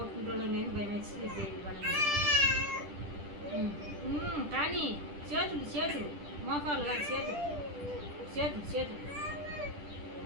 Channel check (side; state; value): left; late; 10 ms